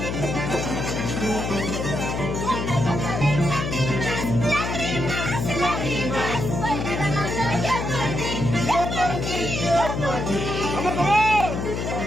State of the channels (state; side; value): noise; left; hum, 3 dB below the sound